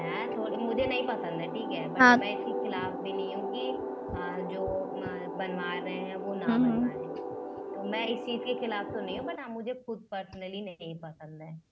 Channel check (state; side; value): identical; both; correlation 1.00